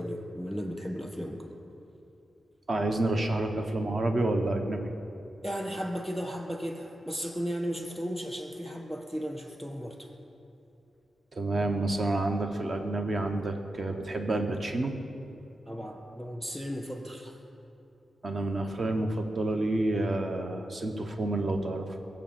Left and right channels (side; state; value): both; normal; correlation 0.89